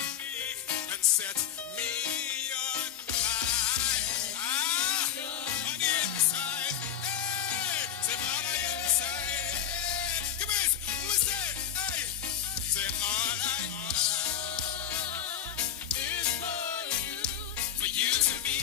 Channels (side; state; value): right; quieter; 9.5 dB